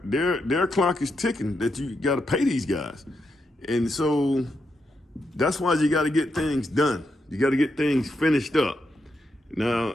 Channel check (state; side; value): normal; both; correlation 0.83